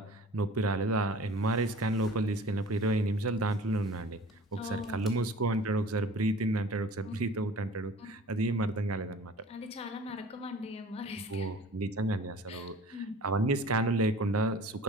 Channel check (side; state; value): both; normal; correlation 0.44